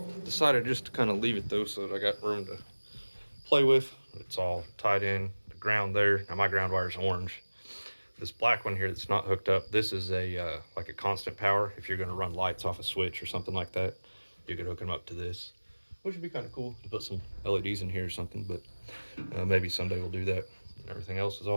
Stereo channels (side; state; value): both; inverted; correlation -1.00